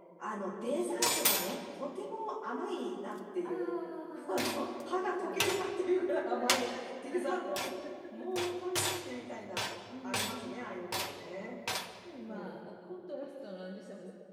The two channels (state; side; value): identical; both; correlation 1.00